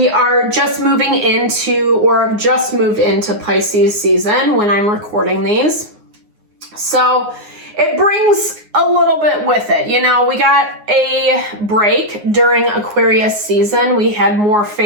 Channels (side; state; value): left; late; 9.6 ms